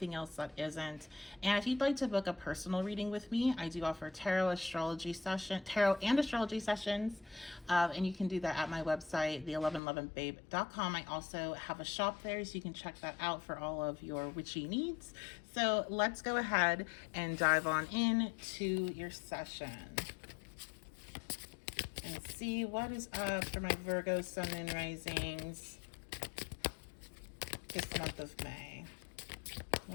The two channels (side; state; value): right; drops out; at 9.8 s